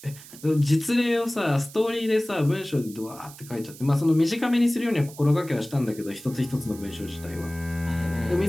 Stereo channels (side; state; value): right; noise; hiss, 18 dB below the sound